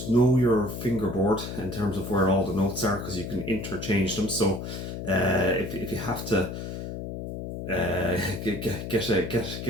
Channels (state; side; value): noise; left; hum, 7 dB below the sound